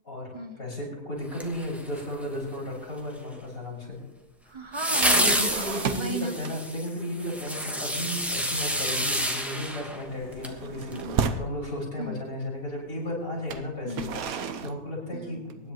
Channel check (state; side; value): normal; both; correlation -0.12